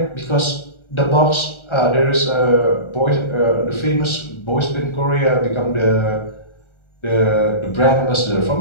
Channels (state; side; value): late; right; 1.4 ms